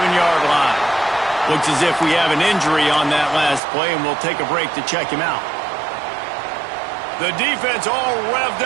line. Looks as if we have an injury on that last play, and we'll take a break to check him out. The defense all revved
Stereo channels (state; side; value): drops out; left; at 3.6 s